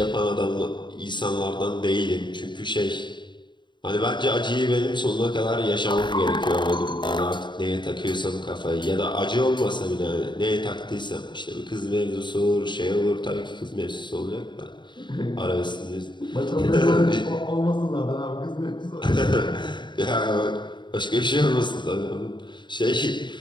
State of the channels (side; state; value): right; late; 0.22 ms